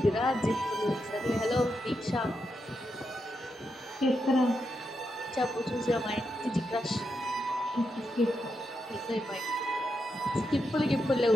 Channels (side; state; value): both; normal; correlation 0.84